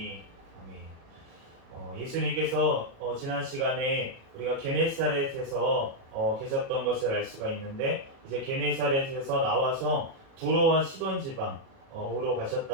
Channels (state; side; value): late; left; 37 ms